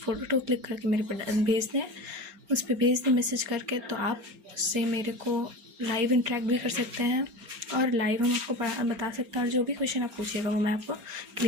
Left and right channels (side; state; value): left; late; 4.3 ms